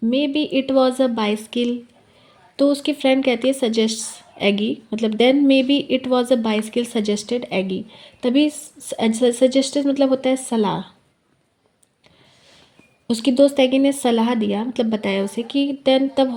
maybe it was a bicycle, तो उसकी फ्रेंड कहती है सजेस्ट एगी, मतलब then maybe it was a bicycle suggested Aggie, तभी सजेस्टेड मतलब होता है सलाह, उसकी दोस्त एगी ने सलाह दिया मतलब बताया उसे कि देन तब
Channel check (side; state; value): both; identical; correlation 1.00